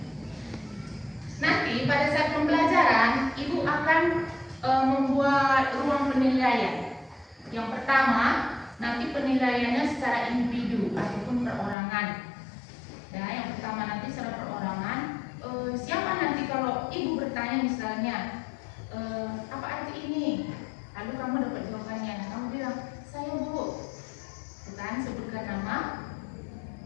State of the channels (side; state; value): right; drops out; at 11.8 s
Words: Nanti pada saat pembelajaran, Ibu akan membuat ruang penilaian. Yang pertama, nanti penilaiannya secara individu ataupun perorangan. Ya, yang pertama nanti secara perorangan. Siapa nanti kalau Ibu bertanya misalnya, apa arti ini? Lalu kamu dapat jawabannya. Nah, kamu bilang, saya Bu. Bukan sebutkan nama,